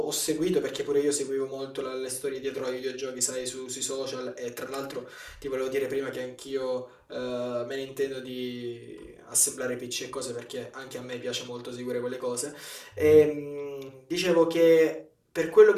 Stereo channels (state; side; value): identical; both; correlation 1.00